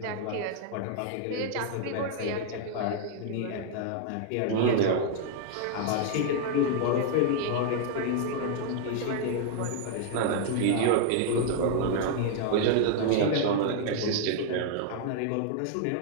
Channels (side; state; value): both; different; correlation -0.01